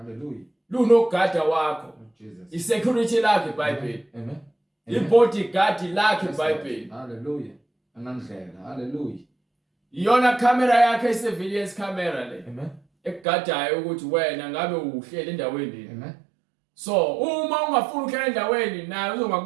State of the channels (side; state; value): left; drops out; at 13.2 s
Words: Lunogada wakho. Jesus. Isecurity lakhe iBhayibheli. Amen. Ibodyguard lakhe iBhayibheli. Hallelujah. Anandlela. Hallelujah. iyona camera yakhe surveillance camera le Amen. ekugadayo ukuthi wena ngabe uhlele endaweni. Amen. So uma ungafuna ukuhlala endaweni naye